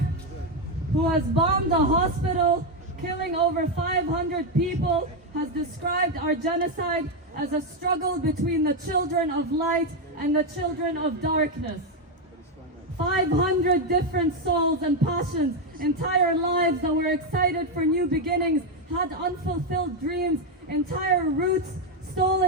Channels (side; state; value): both; normal; correlation 0.06